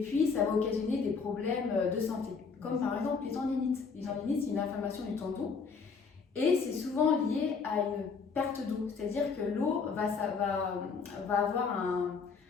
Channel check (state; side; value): quieter; right; 5.2 dB